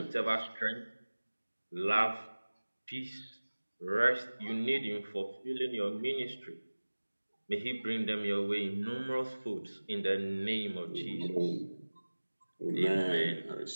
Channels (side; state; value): both; inverted; correlation -1.00